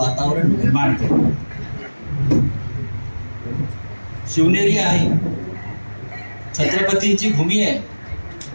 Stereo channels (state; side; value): inverted; both; correlation -1.00